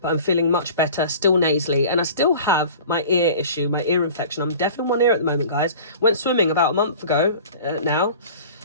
I'm feeling much better, still nasally. And I still have my ear issue, my ear infection. I'm deaf in one ear at the moment, guys. Went swimming about a month ago now.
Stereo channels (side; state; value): both; inverted; correlation -0.42